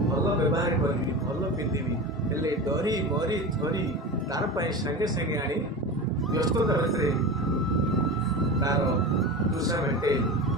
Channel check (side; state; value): both; normal; correlation 0.27